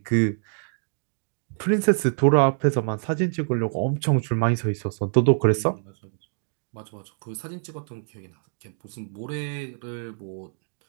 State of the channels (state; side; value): silent; left; digital silence